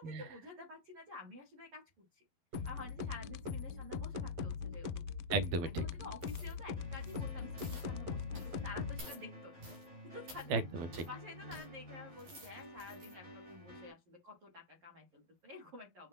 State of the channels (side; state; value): left; late; 12 ms